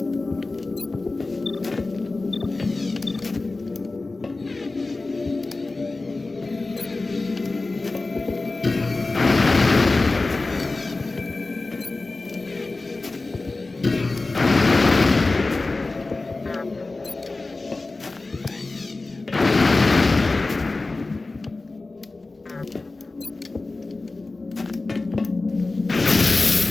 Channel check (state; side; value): quieter; right; 3.4 dB